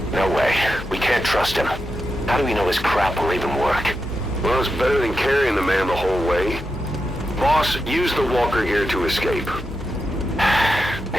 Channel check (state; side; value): normal; both; correlation 0.88